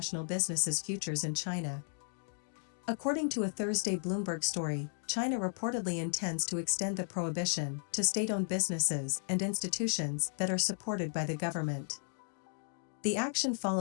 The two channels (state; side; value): silent; right; digital silence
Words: businesses' futures in China. According to a Thursday Bloomberg story, China reportedly intends to extend the prohibition to state-owned businesses and institutions that are supported by the government. The action